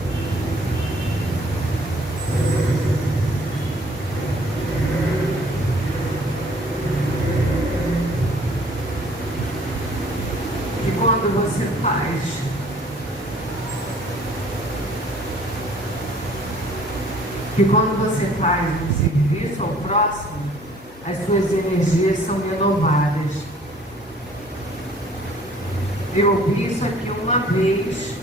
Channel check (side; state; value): both; normal; correlation 0.56